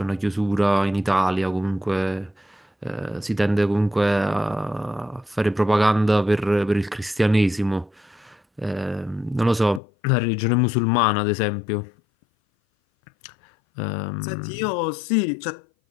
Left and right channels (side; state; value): right; drops out; at 9.8 s